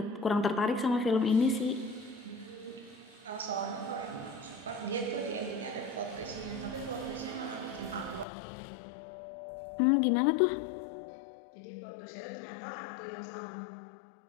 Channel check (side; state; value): right; drops out; at 8.2 s